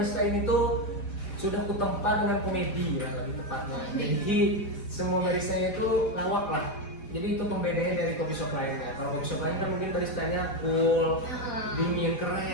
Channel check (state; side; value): late; right; 4.9 ms